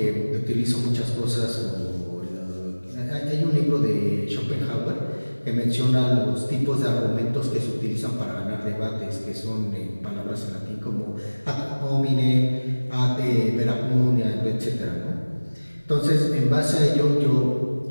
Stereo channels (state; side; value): inverted; both; correlation -1.00